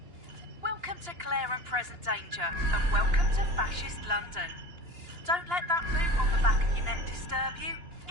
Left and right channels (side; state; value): left; late; 2.9 ms